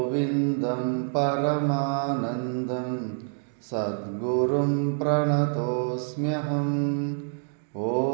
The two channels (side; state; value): left; silent; digital silence